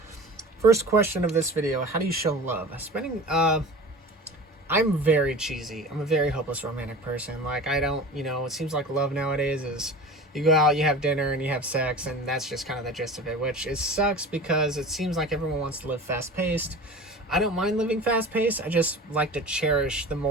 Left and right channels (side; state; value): both; normal; correlation 0.36